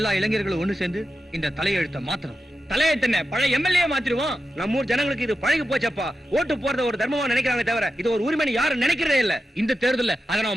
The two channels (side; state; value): both; normal; correlation 0.91